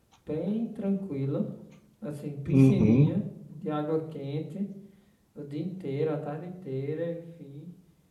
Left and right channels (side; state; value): both; identical; correlation 1.00